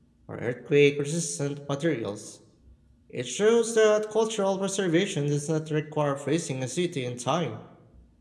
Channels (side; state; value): both; identical; correlation 1.00